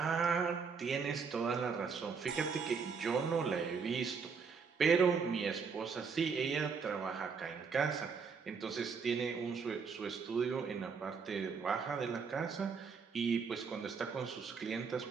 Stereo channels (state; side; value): quieter; left; 5.6 dB